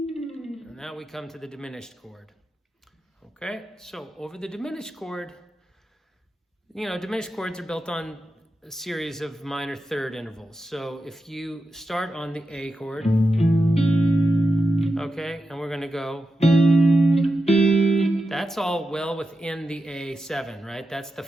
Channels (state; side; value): normal; both; correlation 0.89